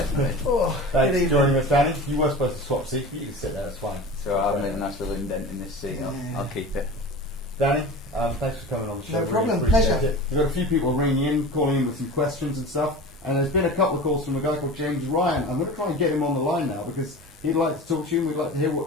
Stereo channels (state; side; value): normal; both; correlation 0.34